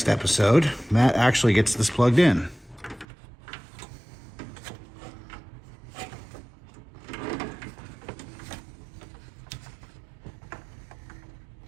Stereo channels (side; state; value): left; drops out; at 3.1 s